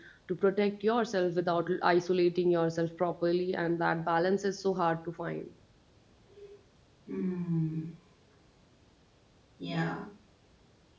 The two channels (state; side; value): identical; both; correlation 1.00